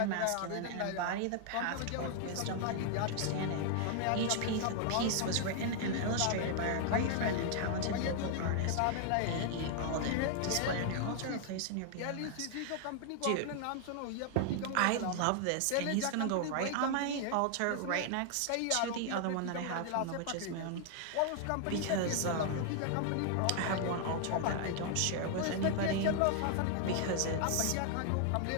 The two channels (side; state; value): both; different; correlation 0.00